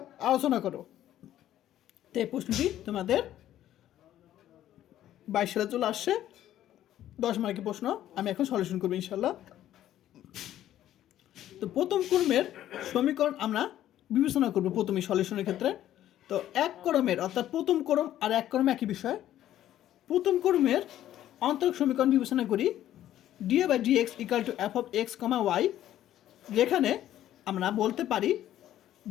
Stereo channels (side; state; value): right; quieter; 12.4 dB